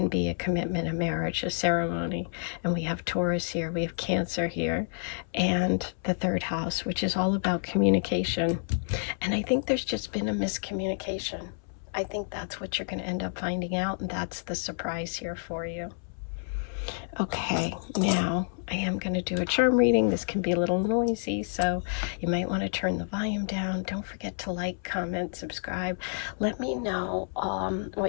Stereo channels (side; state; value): right; silent; 58 dB below the other